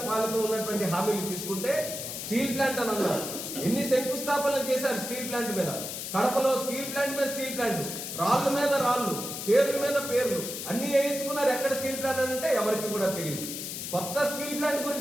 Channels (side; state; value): left; noise; hiss, 6 dB below the sound